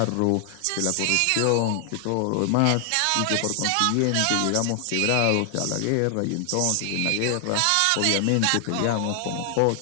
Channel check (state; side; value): different; both; correlation 0.00